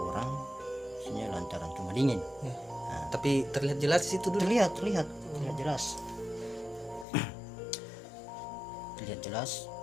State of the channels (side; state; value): right; drops out; at 7.1 s